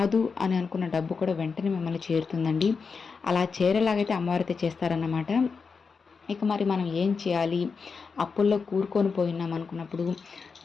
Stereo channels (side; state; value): right; quieter; 5.2 dB